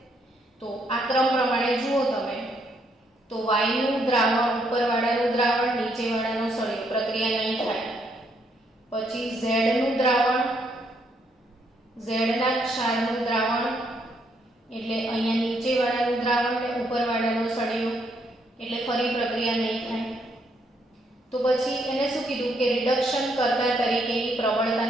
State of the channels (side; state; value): both; normal; correlation 0.73